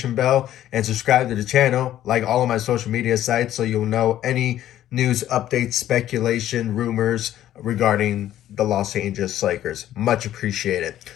bell and subscribe to the channel, like all of my social media sites, so you'll know any news, updates, speculation, rumors regarding the Los Angeles Lakers. Much appreciated.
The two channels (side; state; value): right; quieter; 12.4 dB